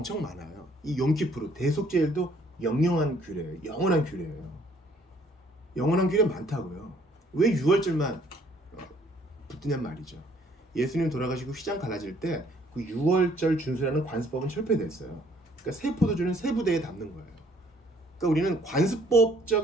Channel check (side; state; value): both; normal; correlation 0.62